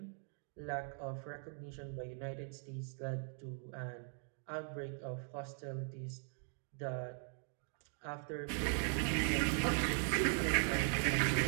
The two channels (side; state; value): left; silent; 51 dB below the other